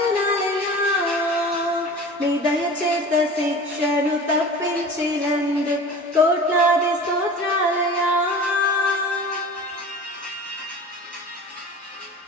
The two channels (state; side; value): normal; both; correlation 0.38